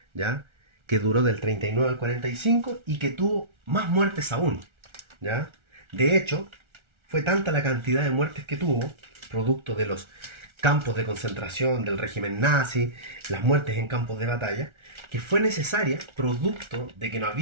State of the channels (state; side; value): late; left; 1.4 ms